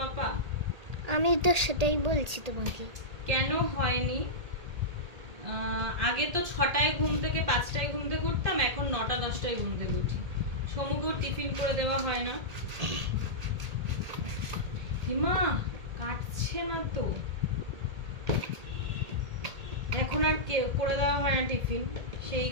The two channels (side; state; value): left; late; 1.8 ms